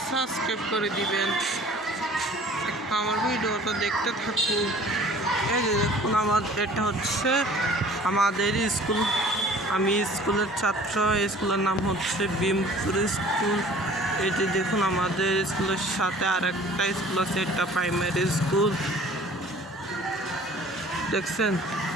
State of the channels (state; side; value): normal; both; correlation 0.49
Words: সাবস্ক্রাইব করে দিবেন। আমার ভিডিওটা দেখতে থাকুন। এই যে দেখুন, এটা হচ্ছে আমাদের স্কুল। আমি স্কুলের ছাত্র। স্কুলের নাম হচ্ছে বিমপুর স্কুল। এটি দেখুন, আমাদের স্কুলের সাথে আরেকটা স্কুল আছে, এটা প্রাইমারি স্কুল। দেখছেন?